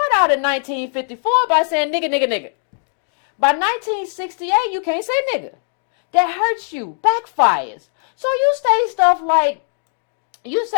out in 1954 by saying nigga, nigga, nigga. By 1968, you can't say nigga. That hurts you, backfires. So you say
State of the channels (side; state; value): right; silent; digital silence